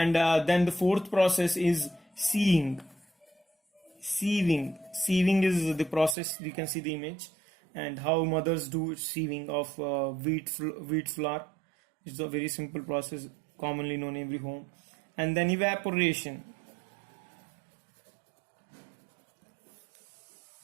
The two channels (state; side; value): drops out; left; at 6.2 s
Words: then the fourth process is sieving. Sieving is the process. You can see the image, and how mothers do sieving of wheat flour. It's a very simple process, commonly known in every home. And then evaporation.